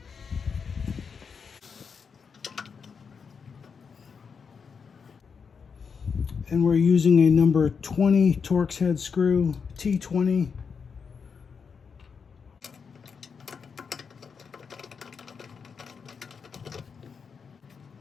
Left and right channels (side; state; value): right; quieter; 5.9 dB